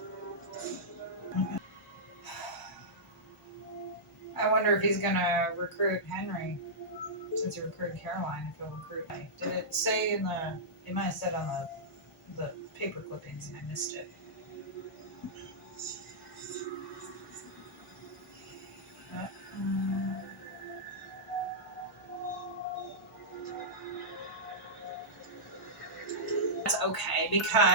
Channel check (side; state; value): both; normal; correlation -0.14